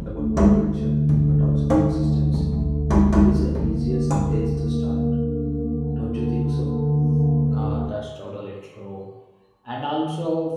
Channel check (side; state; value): both; identical; correlation 1.00